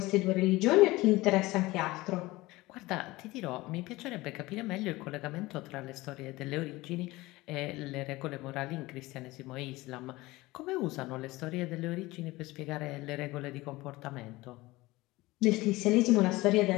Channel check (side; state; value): right; quieter; 20.0 dB